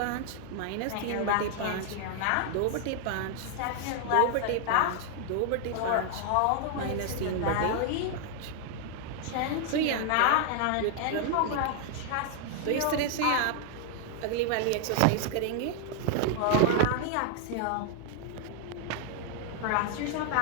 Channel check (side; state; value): both; different; correlation 0.00